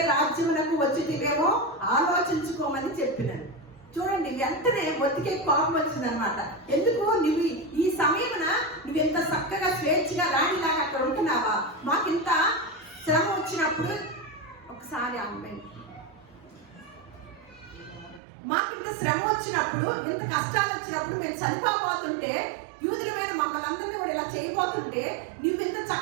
రాజ్యమునకు వచ్చితివేమో ఆలోచించుకోమని చెప్పినాను. చూడండి, వెంటనే మొత్తికే కోపం వచ్చిందనమాట. ఎందుకు నువ్వు ఈ సమయమున నువ్వెంత చక్కగా స్వేచ్ఛగా రాణిలాగా అక్కడ ఉంటున్నావా? మాకింత శ్రమ వచ్చినప్పుడు ఒకసారి అమ్మాయి మాకింత శ్రమ వచ్చినప్పుడు, ఇంత కష్టాలు వచ్చినప్పుడు మేము చనిపోబోతుంటే, యూదుల మీద మమ్మల్ని అందరినీ కూడా ఇలా చేయబోతుంటే నువ్వు ఇంత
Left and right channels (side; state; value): left; drops out; at 18.2 s